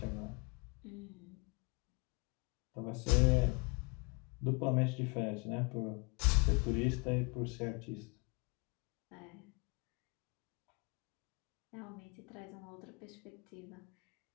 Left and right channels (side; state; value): right; quieter; 31.5 dB